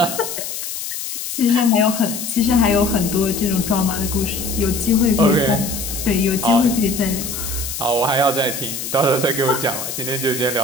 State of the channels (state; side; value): noise; left; hiss, 6 dB below the sound